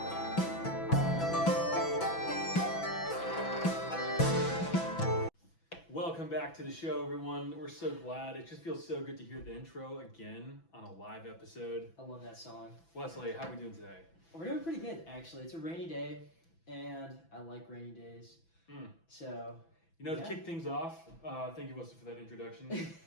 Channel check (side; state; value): right; late; 6.0 ms